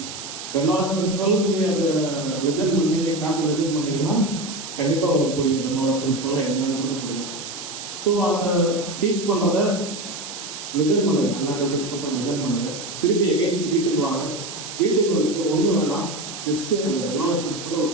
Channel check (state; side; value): noise; right; hiss, 10 dB below the sound